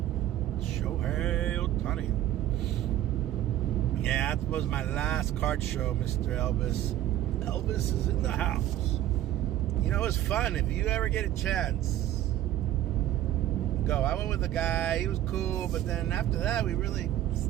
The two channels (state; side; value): quieter; left; 12.7 dB